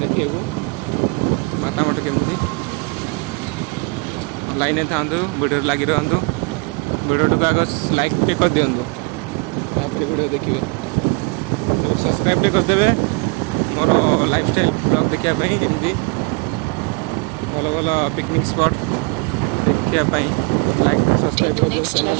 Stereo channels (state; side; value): quieter; left; 31.4 dB